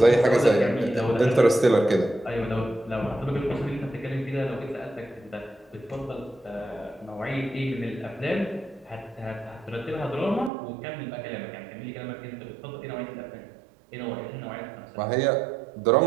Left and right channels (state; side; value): drops out; left; at 10.5 s